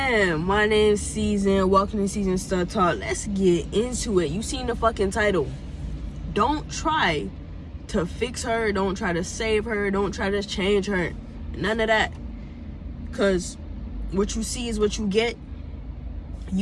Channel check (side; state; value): both; identical; correlation 1.00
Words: My name's Season. Welcome to Season Stud Talk. Let's get into it. You seen the fucking title. Don't try to fix her. Don't try to save her. Don't try to change her. None of that. Because what you see is what you get.